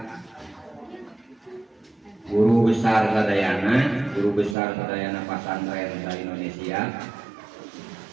guru besar sadayana pasantren di Indonesia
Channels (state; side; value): drops out; left; at 4.5 s